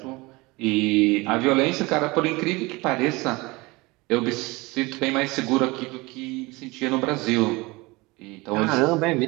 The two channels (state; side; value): quieter; left; 23.4 dB